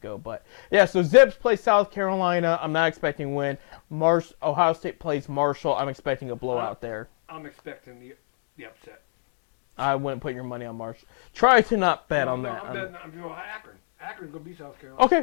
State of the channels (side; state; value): right; silent; digital silence